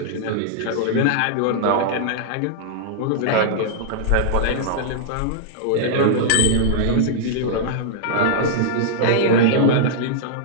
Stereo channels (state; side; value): different; both; correlation -0.02